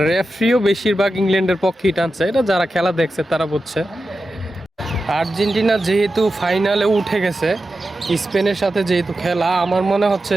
রেফারিও বেশিরভাগ ইংল্যান্ডের পক্ষেই টানছে, এটা যারা খেলা দেখছে তারা বুঝছে। আর্জেন্টিনা যেহেতু ফাইনালে উঠে গেছে, স্পেনের সাথে যেহেতু খেলা, আমার মনে হচ্ছে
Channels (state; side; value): normal; both; correlation 0.91